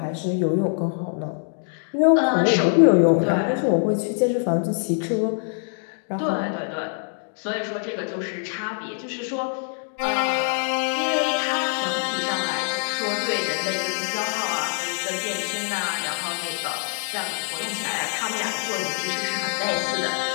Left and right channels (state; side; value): silent; right; 62 dB below the other